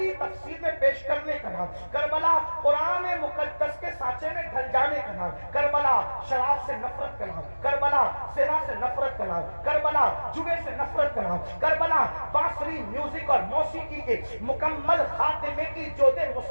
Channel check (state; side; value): inverted; both; correlation -1.00